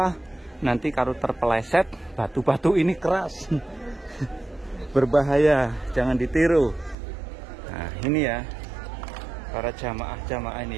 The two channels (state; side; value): drops out; left; at 7.0 s